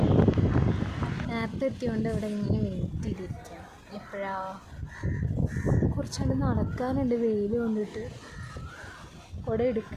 നേരത്തെ എത്തിയോണ്ട് ഇവിടെ ഇങ്ങനെ വെയിറ്റ് ചെയ്തിരിക്കാം. എപ്പോഴാ കുറച്ചുകൊണ്ട് നടക്കാനുണ്ട് വെയിൽ കൊണ്ടിട്ട്. കുട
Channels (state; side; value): identical; both; correlation 1.00